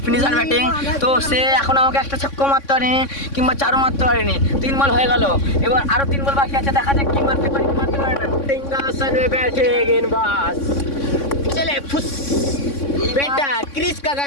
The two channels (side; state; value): right; late; 3.6 ms